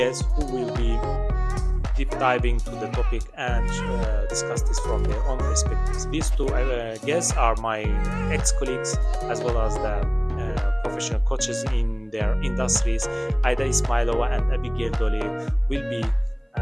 who will be deep diving to the topic and discuss this from their own perspectives. These two guests are my ex-colleagues as well as the professional coaches in their industries. Aidai Ismailova and Abigail Dolley will be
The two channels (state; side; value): identical; both; correlation 1.00